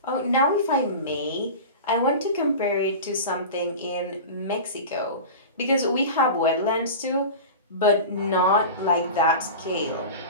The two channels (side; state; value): both; inverted; correlation -0.31